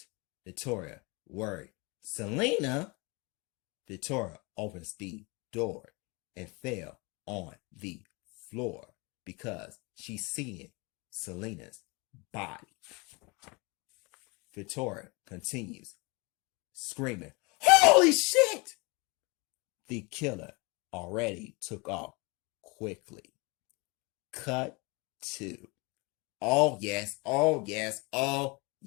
Victoria worried. Selena? Victoria opens the door and fell on the floor because she's seeing Selena's body. Victoria continues screaming, "Holy shit!" The killer already took off quickly. Cut 2. Oh yes, oh yes, oh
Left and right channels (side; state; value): right; quieter; 27.8 dB